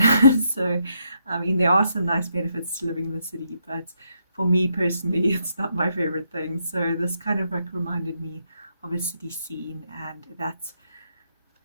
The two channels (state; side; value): inverted; both; correlation -0.78